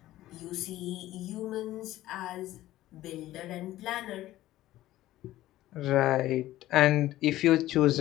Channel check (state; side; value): quieter; right; 15.1 dB